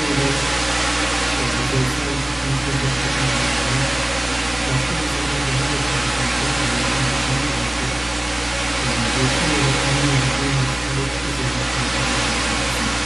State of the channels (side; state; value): right; noise; hum, 25 dB below the sound